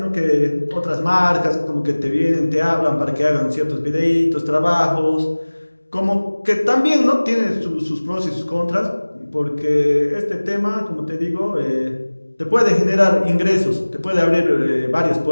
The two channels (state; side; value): inverted; both; correlation -1.00